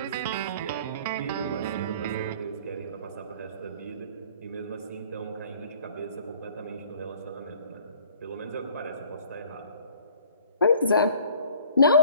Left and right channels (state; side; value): inverted; both; correlation -0.53